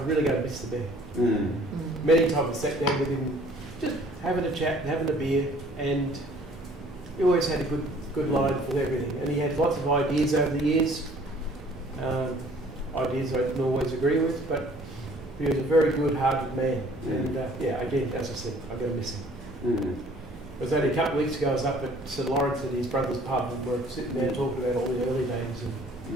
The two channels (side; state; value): both; normal; correlation 0.55